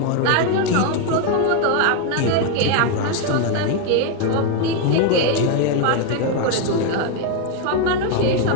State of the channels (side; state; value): both; different; correlation 0.01